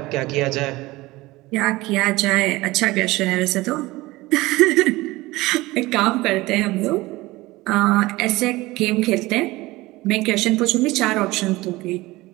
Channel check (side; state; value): left; quieter; 19.8 dB